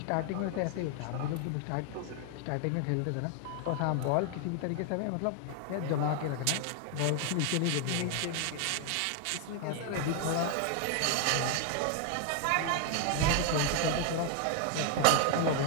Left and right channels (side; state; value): both; different; correlation 0.00